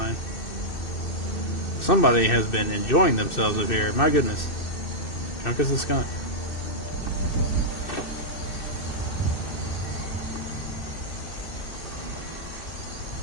Somebody has been enjoying themselves up here. My goodness. Drunk as a skunk.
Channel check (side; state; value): right; late; 2.6 ms